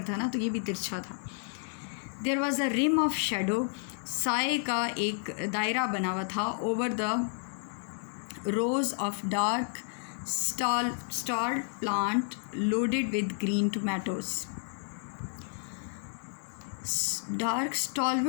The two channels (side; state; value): right; silent; 57 dB below the other